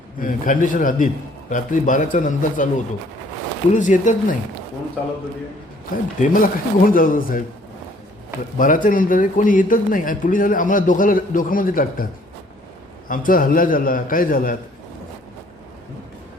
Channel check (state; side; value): normal; both; correlation 0.59